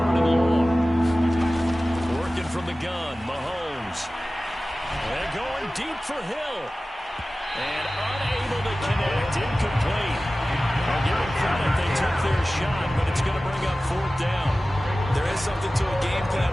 and long. Working from the gun, Mahomes. And going deep for Hill. And unable to connect, incomplete. I'll give them credit, they took their shot, but it's going to bring up 4th down. There is something to a game plan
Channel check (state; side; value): normal; both; correlation 0.96